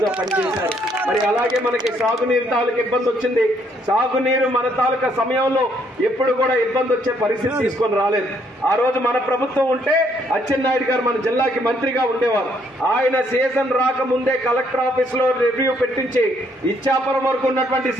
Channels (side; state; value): both; normal; correlation 0.69